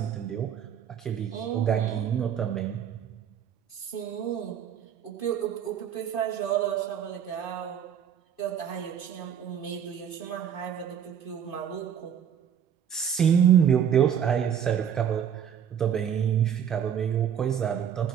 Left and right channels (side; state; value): left; quieter; 8.7 dB